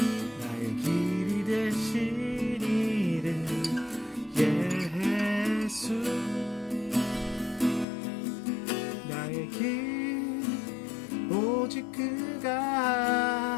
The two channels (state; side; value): drops out; right; at 7.9 s